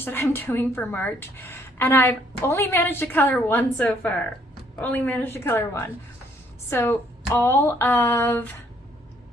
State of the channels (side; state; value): both; normal; correlation 0.66